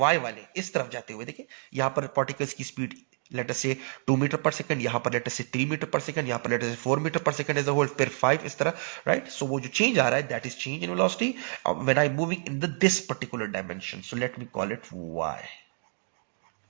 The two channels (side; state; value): left; silent; digital silence